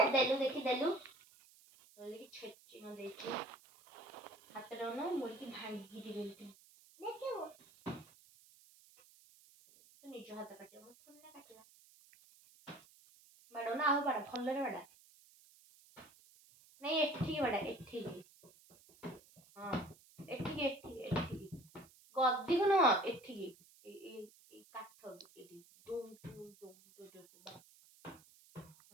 देलु देखी देलु बोलिकी छेची न देची हाथ रौना मुर्गी भांगी दी बोलती देखियो तो निज हाथ काटियो मत थोड़ी ना काटिया बड़ो ना आओ बड़ा भल्ले रे बड़ा नहीं एठी बड़ा एठी हां ଗଦିକୁ ନୁହଁ ଏଠିକି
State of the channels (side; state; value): right; noise; hiss, 25 dB below the sound